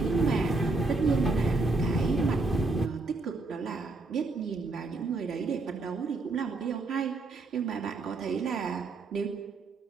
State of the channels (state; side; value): quieter; left; 3.4 dB